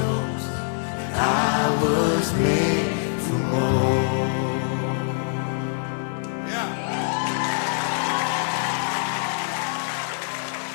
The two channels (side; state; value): right; silent; digital silence